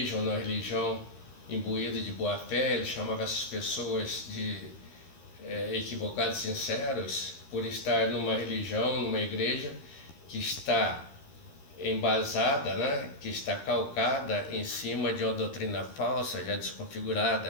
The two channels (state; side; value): late; right; 13 ms